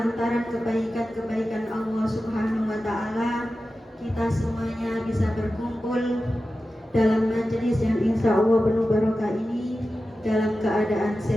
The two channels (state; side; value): normal; both; correlation 0.93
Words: kebaikan-kebaikan Allah Subhanahu wa ta'ala kita semuanya bisa berkumpul dalam majelis yang insya Allah penuh barokah ini dalam keadaan